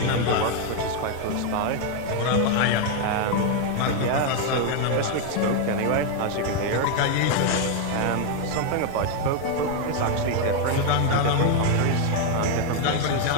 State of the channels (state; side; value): different; both; correlation 0.01